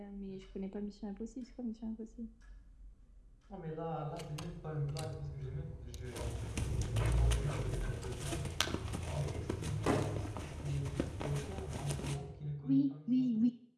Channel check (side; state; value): both; identical; correlation 1.00